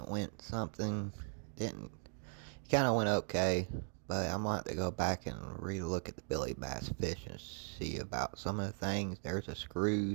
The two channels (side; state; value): left; silent; 52 dB below the other